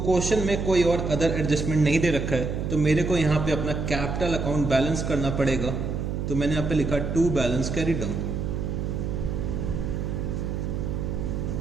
क्वेश्चन में कोई और अदर एडजस्टमेंट नहीं दे रखा है, तो मेरे को यहाँ पे अपना कैपिटल अकाउंट बैलेंस करना पड़ेगा। तो मैंने यहाँ पे लिखा टू बैलेंस कैरी डाउन।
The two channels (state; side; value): noise; right; hum, 2 dB below the sound